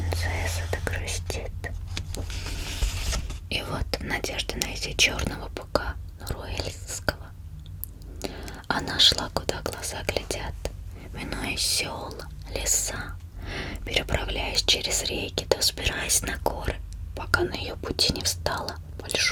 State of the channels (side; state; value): both; identical; correlation 1.00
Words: да грустит. И вот, в надежде найти черного быка нуруэльского, она шла, куда глаза глядят, минуя села, леса, переправляясь через реки, да взбираясь на горы, пока на ее пути не встала